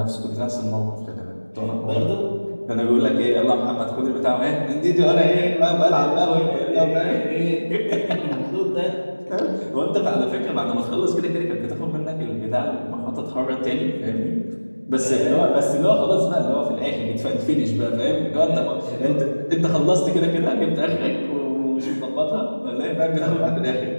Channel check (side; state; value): both; inverted; correlation -1.00